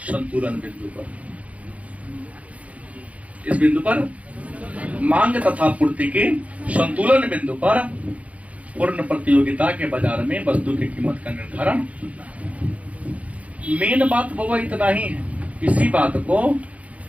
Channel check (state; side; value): late; left; 0.067 ms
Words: संतुलन बिंदु पर। इस बिंदु पर मांग तथा पूर्ति के संतुलन बिंदु पर पूर्ण प्रतियोगिता के बाजार में वस्तु की कीमत का निर्धारण। मेन बात वो इतना ही है। इसी बात को